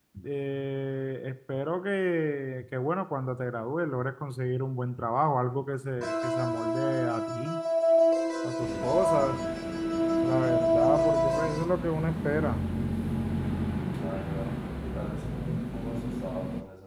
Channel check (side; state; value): both; identical; correlation 1.00